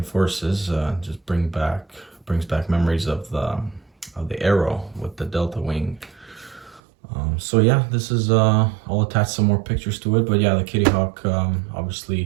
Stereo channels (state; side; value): drops out; left; at 6.8 s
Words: Forces. Just brings back memories of the Arrow with the Delta Wing. So yeah, this is I'll attach some more pictures to it, but yeah, the Kitty Hawk,